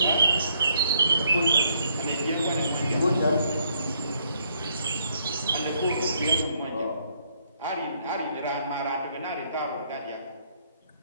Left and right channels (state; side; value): inverted; both; correlation -0.71